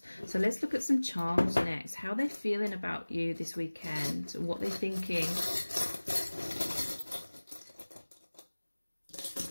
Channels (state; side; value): inverted; both; correlation -1.00